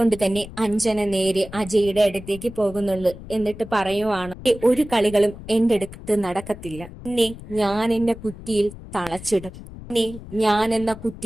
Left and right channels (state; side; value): noise; left; rumble, 15 dB below the sound